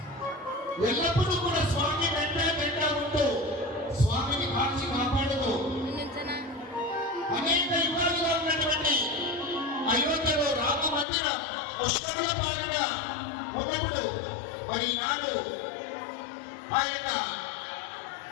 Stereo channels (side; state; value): right; drops out; at 11.1 s